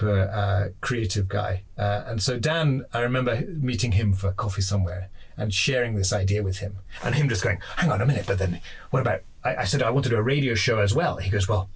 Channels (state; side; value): identical; both; correlation 1.00